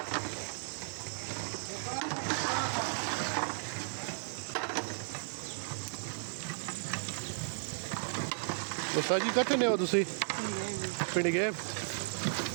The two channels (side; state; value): left; silent; digital silence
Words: तो सर जी कितने हो तुसी पिंड गए